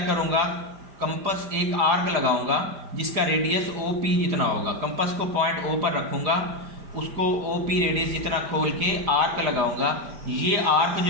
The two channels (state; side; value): late; left; 5.1 ms